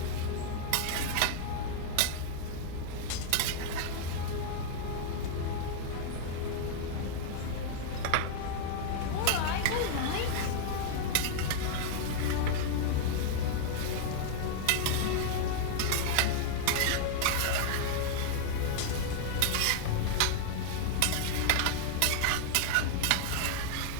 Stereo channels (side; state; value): both; different; correlation -0.01